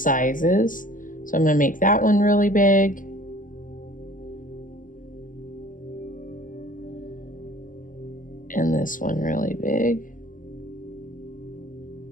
So I'm going to make that one really big. And this one really big.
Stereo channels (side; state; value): right; late; 0.38 ms